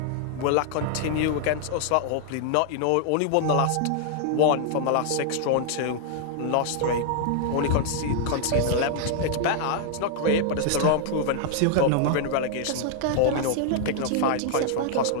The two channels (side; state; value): both; different; correlation -0.01